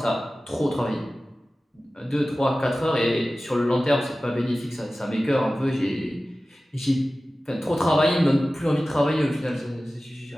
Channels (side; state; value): both; normal; correlation 0.96